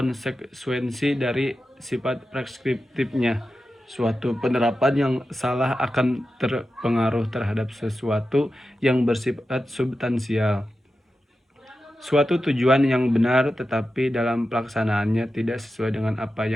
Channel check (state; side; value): normal; both; correlation 0.91